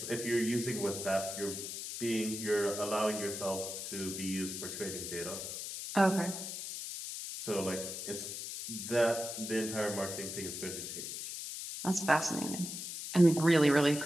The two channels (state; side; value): noise; left; hiss, 6 dB below the sound